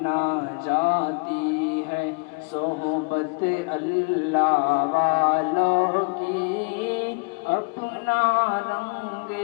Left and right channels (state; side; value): quieter; right; 33.7 dB